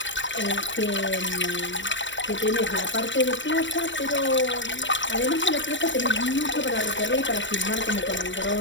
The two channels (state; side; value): late; right; 0.54 ms